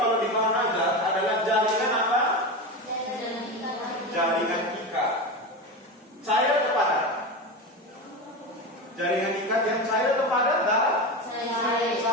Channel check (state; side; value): normal; both; correlation 0.21